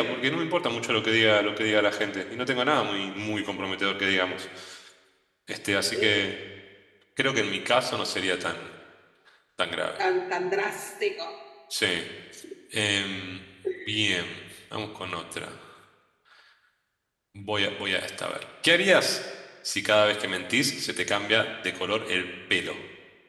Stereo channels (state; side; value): identical; both; correlation 1.00